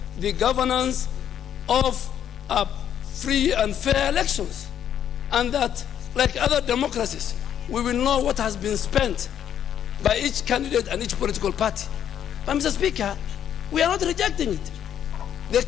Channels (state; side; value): quieter; right; 9.7 dB